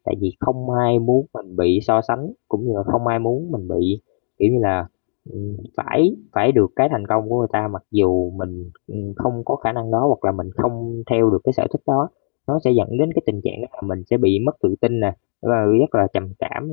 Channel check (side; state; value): right; silent; digital silence